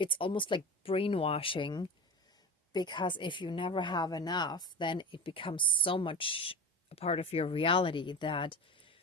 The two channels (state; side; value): normal; both; correlation 0.28